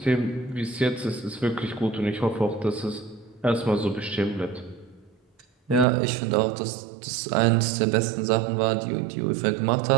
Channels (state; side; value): drops out; left; at 5.9 s